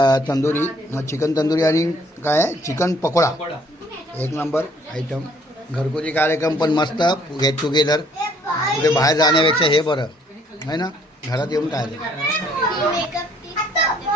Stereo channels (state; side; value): normal; both; correlation 0.62